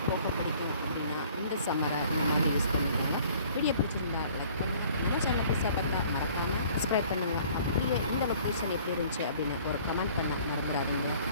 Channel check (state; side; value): inverted; both; correlation -0.54